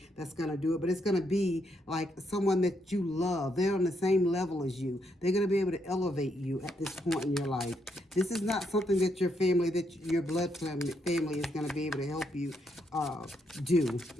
that's going to do it, but it's going to be like someone that you love. They're on the same level as you. They're going to be able to elevate you at this point in your life. This is not something that your family, that your blood family is going to be able to help you do.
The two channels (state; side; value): normal; both; correlation 0.77